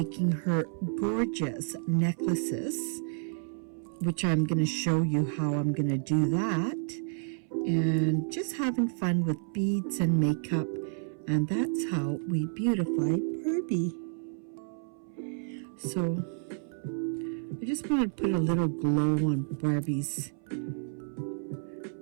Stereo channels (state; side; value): silent; left; 58 dB below the other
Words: her gorgeous necklaces, which I'm going to show you how I'm going to do that. And just having fun with beads and makeup. And that's how we beautify Barbie. So I just want to put a little glow on Barbie's.